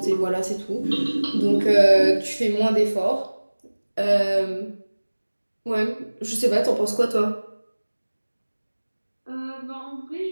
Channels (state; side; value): inverted; both; correlation -1.00